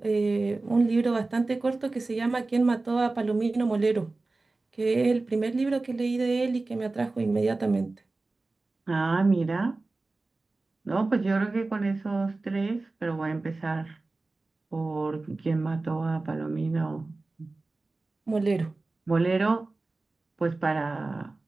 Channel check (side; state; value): left; quieter; 3.3 dB